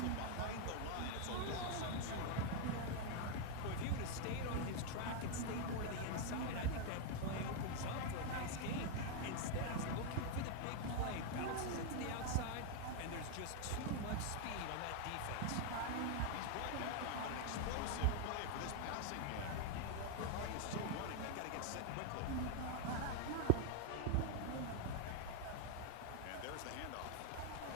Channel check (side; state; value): both; different; correlation 0.00